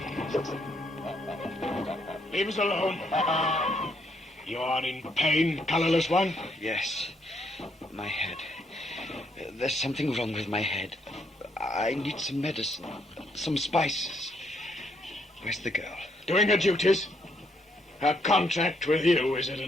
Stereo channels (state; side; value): normal; both; correlation 0.73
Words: Leave us alone. You are in pain, colorless one? Yes. My head. There's something wrong with my head. I need some medicine. Some spices. Where's the girl? Doing her duties. Her contract with you is at